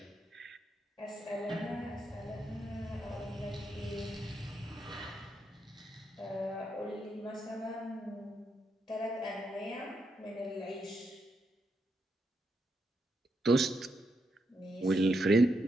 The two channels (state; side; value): normal; both; correlation 0.81